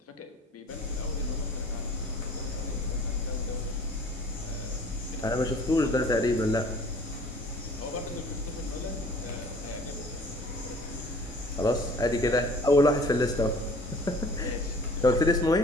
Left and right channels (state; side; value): normal; both; correlation 0.50